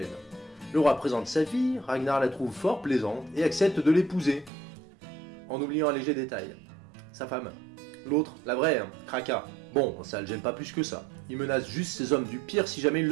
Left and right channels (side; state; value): left; drops out; at 4.5 s